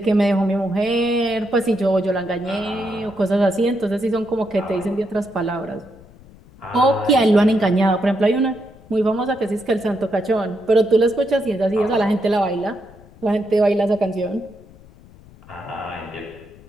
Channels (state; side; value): noise; left; rumble, 23 dB below the sound